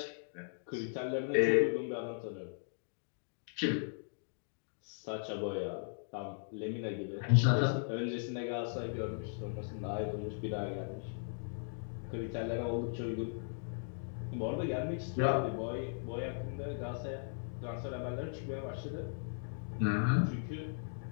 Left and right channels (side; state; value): right; silent; digital silence